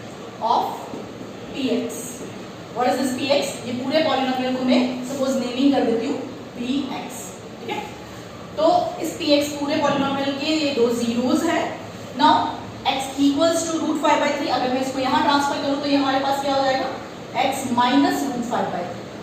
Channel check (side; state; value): both; identical; correlation 1.00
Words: of px. What is this px? ये पूरे polynomial को मैं suppose naming कर देती हूँ px, ठीक है। तो इस px पूरे पॉलिनोमियल के ये 2 zeros है। Now x equals to root 5 by 3, अगर मैं इसको यहाँ ट्रांसफर करूँ तो ये हमारे पास क्या हो जाएगा, x minus root 5 by